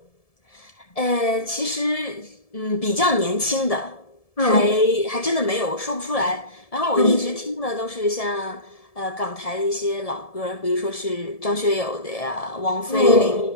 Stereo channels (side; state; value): right; late; 1.7 ms